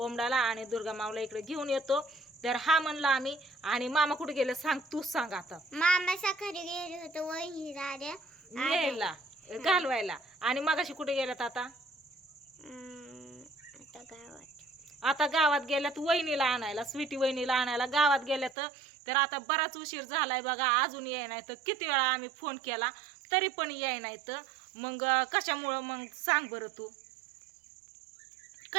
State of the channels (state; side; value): drops out; left; at 18.6 s